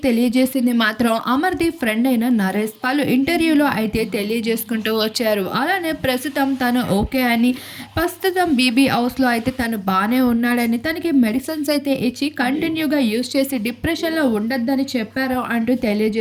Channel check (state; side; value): identical; both; correlation 1.00